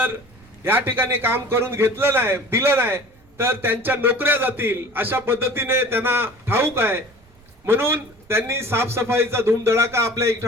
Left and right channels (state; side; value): noise; right; rumble, 27 dB below the sound